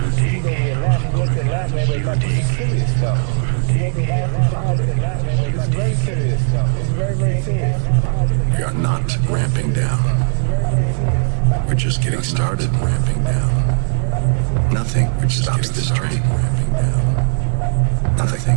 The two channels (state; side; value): silent; left; digital silence